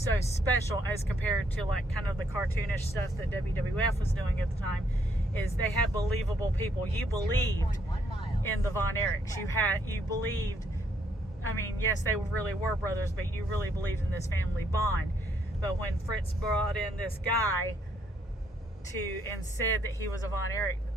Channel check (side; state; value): both; normal; correlation 0.71